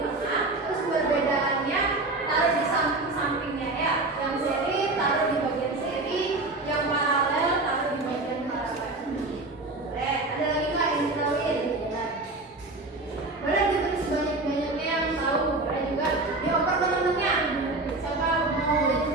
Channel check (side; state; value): left; quieter; 3.1 dB